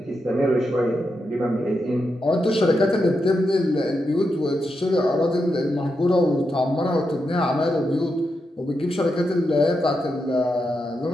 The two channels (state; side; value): normal; both; correlation 0.86